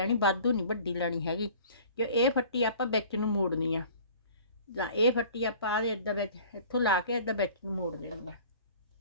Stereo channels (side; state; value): both; inverted; correlation -0.46